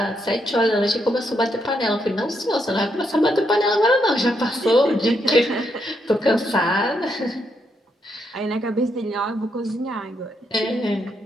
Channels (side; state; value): both; normal; correlation 0.78